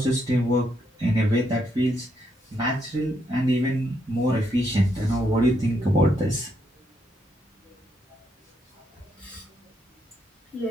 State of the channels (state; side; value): normal; both; correlation 0.77